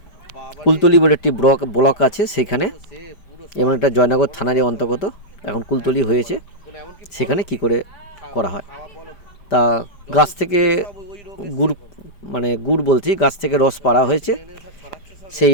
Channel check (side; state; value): right; late; 4.9 ms